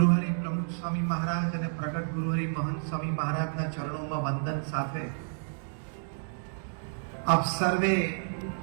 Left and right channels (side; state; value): left; silent; digital silence